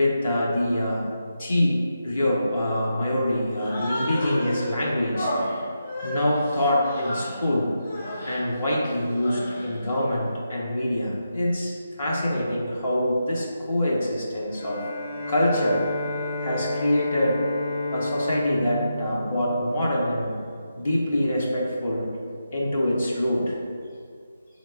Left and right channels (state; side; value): inverted; both; correlation -0.85